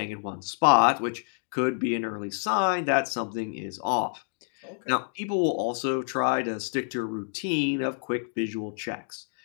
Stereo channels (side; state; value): right; silent; 59 dB below the other